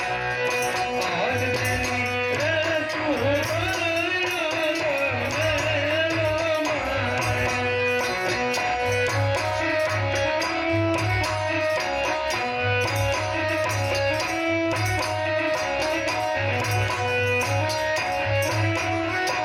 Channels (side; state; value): both; identical; correlation 1.00